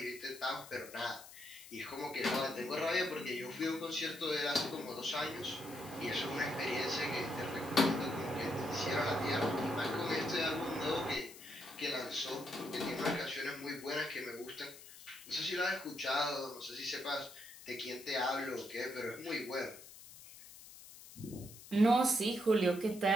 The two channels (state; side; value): noise; left; hiss, 17 dB below the sound